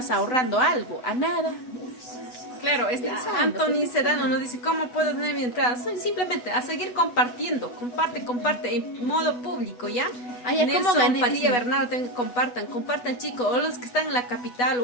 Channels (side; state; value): right; late; 8.2 ms